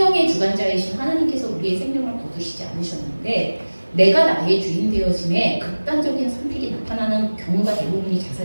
주관자이신 하나님께서 우리의 생명을 거두시지 않으셨는데 내가 나의 주인 되어짐에 극단적인 선택이 나타나는 경우가 대부분이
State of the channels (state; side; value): inverted; both; correlation -1.00